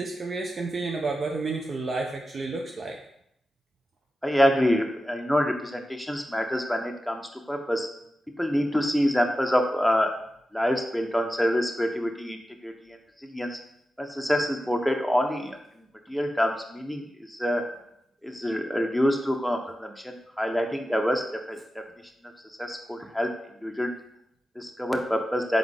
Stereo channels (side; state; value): both; normal; correlation 0.92